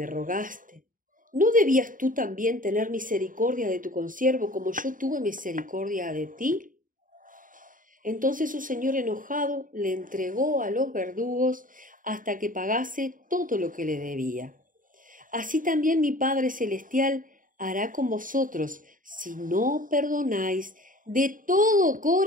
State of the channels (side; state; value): left; late; 0.39 ms